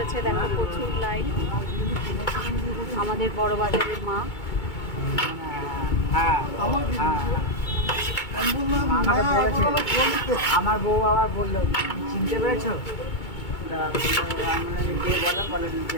দেখো প্রচুর লাইন। আমাদের বড় বাজারের মা। হ্যাঁ আমাকে বলেছে, আমার বউ আবার বললো চিনতে পেরেছো?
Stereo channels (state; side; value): late; right; 2.2 ms